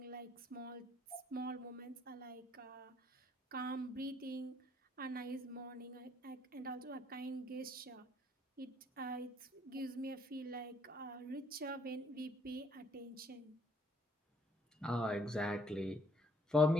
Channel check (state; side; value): normal; both; correlation 0.65